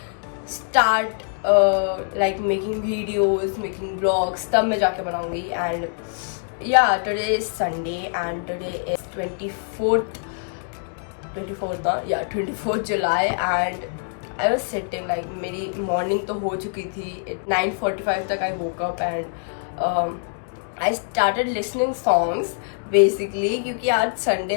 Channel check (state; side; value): silent; right; digital silence